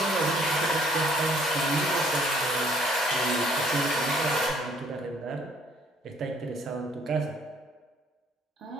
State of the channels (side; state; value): both; normal; correlation 0.62